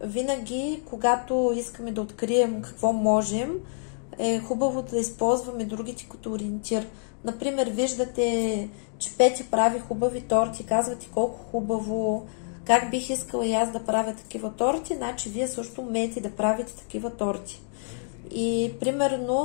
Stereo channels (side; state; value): right; silent; digital silence